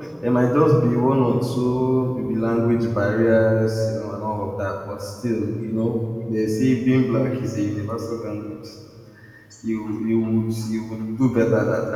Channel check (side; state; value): both; identical; correlation 1.00